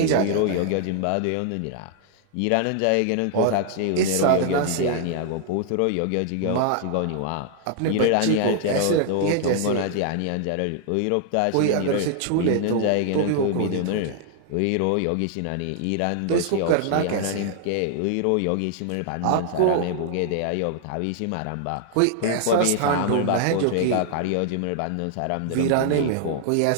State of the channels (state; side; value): different; both; correlation 0.00